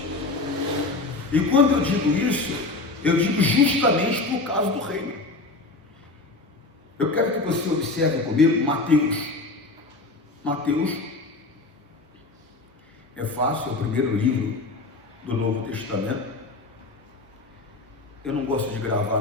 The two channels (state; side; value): quieter; right; 3.3 dB